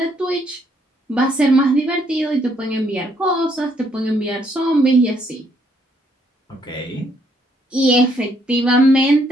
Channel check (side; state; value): both; normal; correlation 0.70